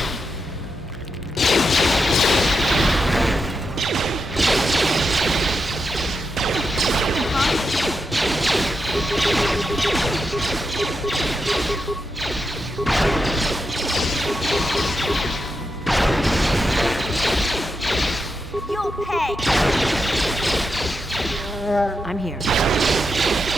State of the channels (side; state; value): both; normal; correlation 0.86